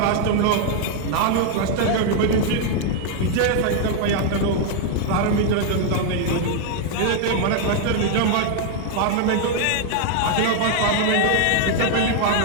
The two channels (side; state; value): both; different; correlation 0.00